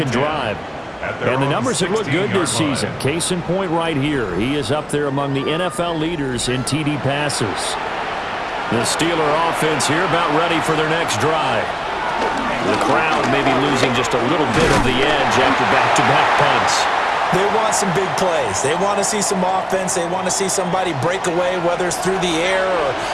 drive. at their And the own numbers have looked good 16-yard this season. line. Case in point right here. He is up there among the NFL leaders in TD passes. The Steeler offense here about ready for their next drive. The crowd may be losing just a little bit of the edge after back-to-back punts. They want some big plays. They want to see some offense. They want to see somebody break away, whether it's through the air or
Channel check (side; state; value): both; identical; correlation 1.00